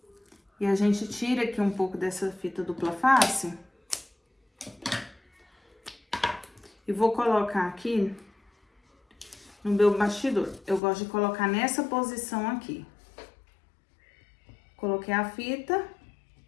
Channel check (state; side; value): drops out; right; at 10.8 s